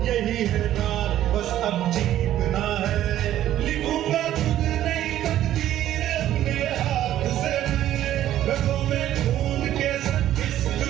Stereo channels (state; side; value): quieter; left; 12.5 dB